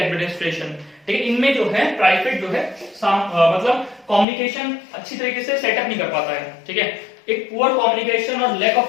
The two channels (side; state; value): right; drops out; at 4.2 s